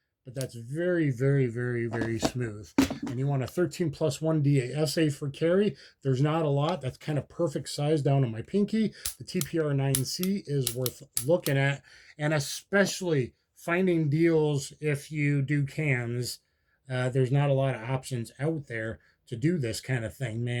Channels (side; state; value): both; identical; correlation 1.00